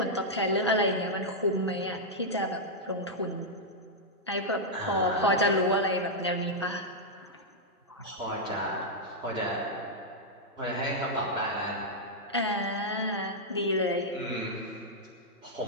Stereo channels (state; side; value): normal; both; correlation -0.05